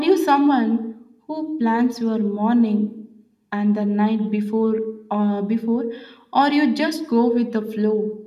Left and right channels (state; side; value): identical; both; correlation 1.00